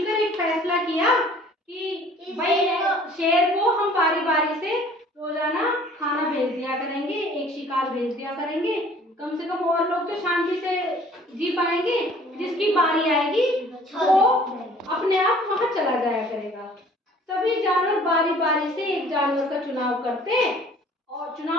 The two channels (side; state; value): both; normal; correlation 0.52